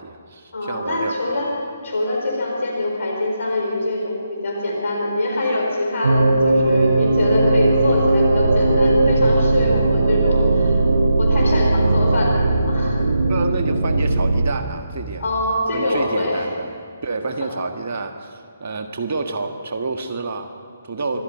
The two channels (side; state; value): both; inverted; correlation -0.84